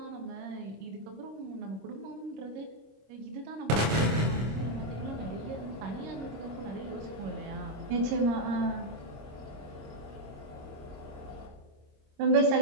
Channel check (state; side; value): late; left; 26 ms